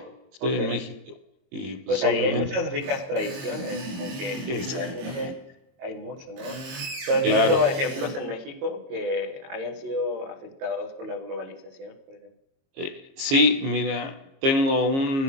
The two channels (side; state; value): left; late; 22 ms